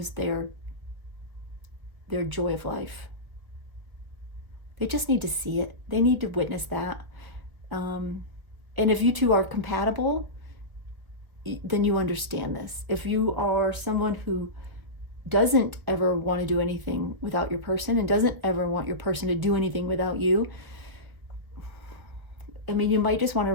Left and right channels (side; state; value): left; late; 1.5 ms